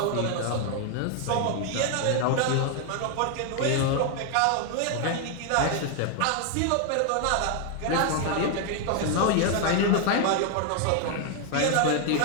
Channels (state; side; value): different; both; correlation 0.00